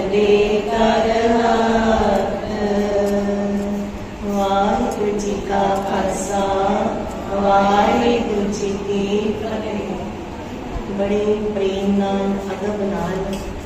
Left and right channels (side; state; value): both; identical; correlation 1.00